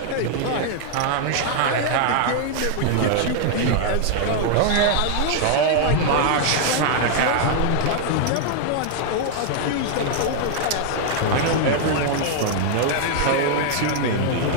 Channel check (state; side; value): different; both; correlation -0.01